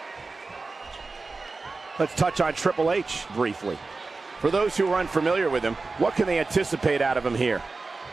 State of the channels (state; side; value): quieter; left; 3.8 dB